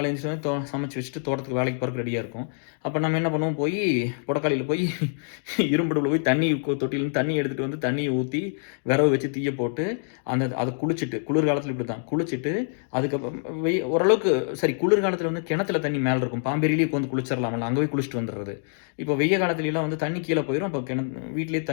எந்திரிச்சோனே சமைச்சு வச்சுட்டு தோட்டத்துக்கு வேலைக்கு போறதுக்கு ரெடியா இருக்கும். அப்ப நம்ம என்ன பண்ணுவோம், போயி புடக்காலையில போய் இரும்புடுப்புல போய் தண்ணி தொட்டியிலருந்து தண்ணி எடுத்துட்டு வந்து தண்ணிய ஊத்தி, விறகு வச்சு தீய போட்டு, அத குளிச்சுட்டு குளிர்காலத்தில இப்படித்தான். குளிச்சுட்டு, அதுக்கப்புறம் ஓரளவுக்கு சரி குளிர்காலத்தில வந்து கிணத்துல தண்ணி மேல இருக்கும். பாம்பேரியிலேயே உட்காந்து குளிச்சிரலாம்ல, அங்க போய் குளிச்சுட்டு வந்துர்றது. இப்போ வெய்ய காலத்துலலாம் வந்து தண்ணி கீழ போயிரும். அப்ப வீட்லயே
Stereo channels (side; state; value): right; silent; 61 dB below the other